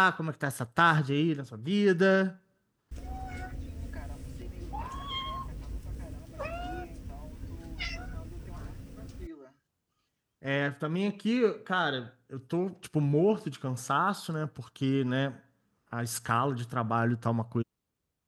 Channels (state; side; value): identical; both; correlation 1.00